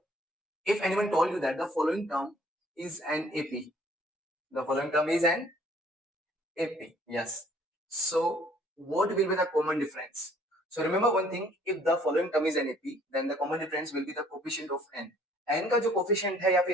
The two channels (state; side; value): normal; both; correlation 0.58